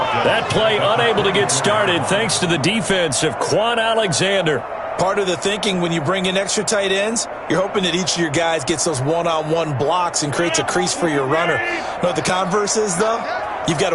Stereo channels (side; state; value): both; identical; correlation 1.00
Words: That play unable to get started thanks to the defense of Quan Alexander. Part of the thinking when you bring in extra tight ends, you're hoping that each of your guys gets those one-on-one blocks and creates a crease for your runner. You know what the converse is, though? You've got